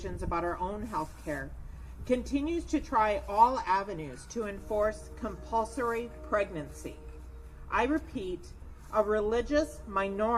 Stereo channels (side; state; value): both; identical; correlation 1.00